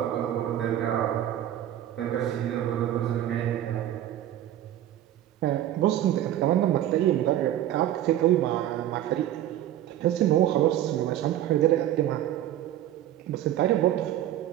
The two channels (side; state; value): left; quieter; 12.4 dB